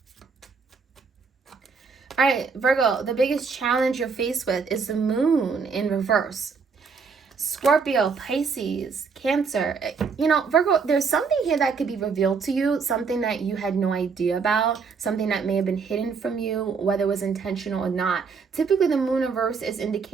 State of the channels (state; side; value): quieter; left; 5.3 dB